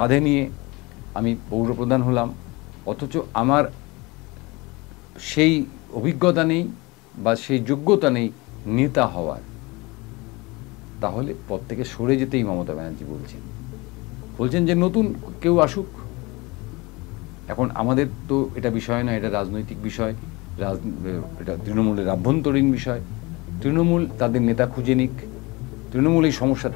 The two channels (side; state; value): right; quieter; 24.3 dB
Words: নিয়ে আমি পৌরপ্রধান হলাম, অথচ আমার সেই অভিজ্ঞতা নেই বা সেই যোগ্যতা নেই নেতা হওয়ার। তাহলে পদ থেকে সরে যেতেই মমতা ব্যানার্জি বলছেন যে নতুন কেউ আসুক। এখন আমাদের তো এটা বিষয় নয়, এটা রাজনৈতিক বিষয়, এটা তৃণমূলের আভ্যন্তরীণ বিষয়। তৃণমূল তাদের নেতা খুঁজে নিক, তৃণমূল এই সমস্যার